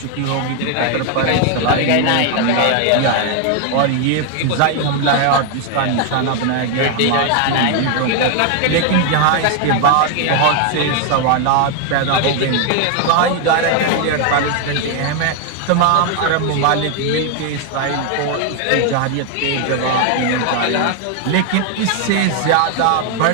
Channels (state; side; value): different; both; correlation 0.01